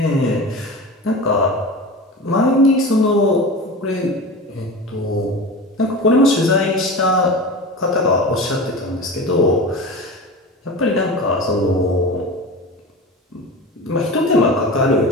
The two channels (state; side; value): normal; both; correlation 0.30